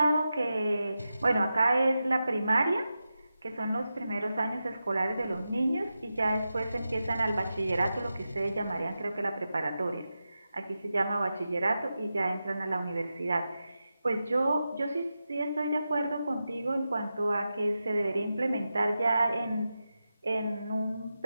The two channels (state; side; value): inverted; both; correlation -0.91